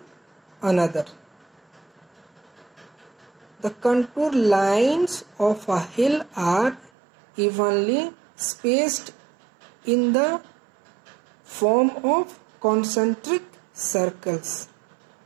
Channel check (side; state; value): left; drops out; at 6.9 s